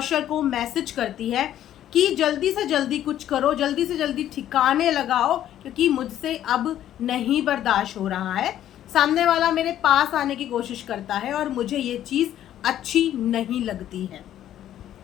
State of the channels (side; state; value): right; quieter; 11.7 dB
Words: को मैसेज करती है कि जल्दी से जल्दी कुछ करो, जल्दी से जल्दी ठिकाने लगाओ, क्योंकि मुझसे अब नहीं बर्दाश्त हो रहा है। सामने वाला मेरे पास आने की कोशिश करता है और मुझे ये चीज़ अच्छी नहीं लगती है।